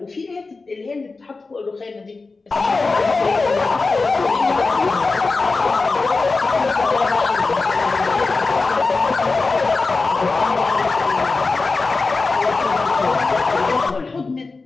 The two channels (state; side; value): quieter; right; 3.9 dB